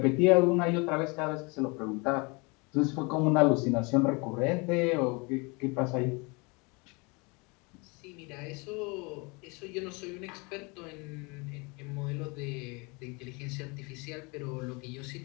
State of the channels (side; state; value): right; quieter; 28.8 dB